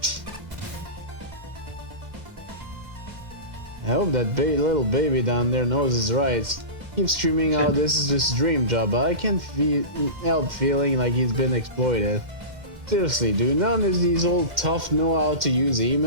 I hope that little baby down there knows his rights. Keeps screaming out this is his dream job, but I can't help feeling like he's been exploited. Seriously, do none of these old tough know how to use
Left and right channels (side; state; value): left; late; 2.1 ms